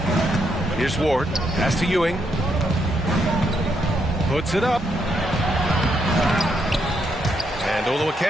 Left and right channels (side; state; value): both; normal; correlation 0.77